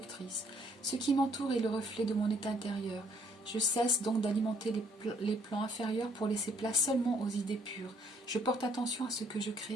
Ce qui m'entoure est le reflet de mon état intérieur. Je cesse donc d'alimenter les plans inférieurs pour laisser place seulement aux idées pures. Je porte attention à ce que je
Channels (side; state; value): both; normal; correlation 0.66